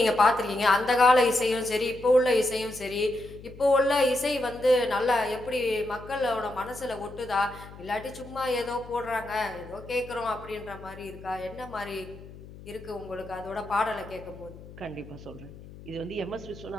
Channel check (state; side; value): noise; left; hum, 17 dB below the sound